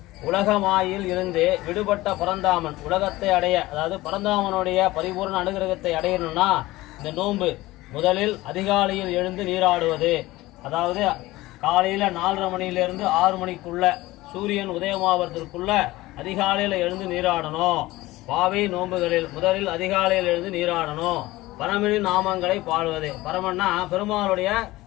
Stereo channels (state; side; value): quieter; right; 18.5 dB